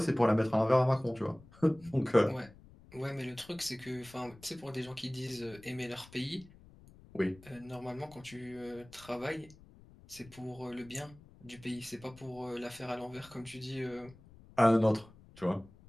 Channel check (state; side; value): noise; left; rumble, 22 dB below the sound